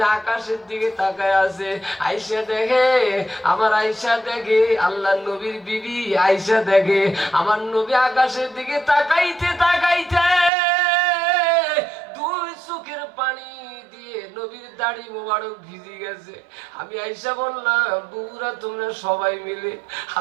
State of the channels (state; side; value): drops out; left; at 10.5 s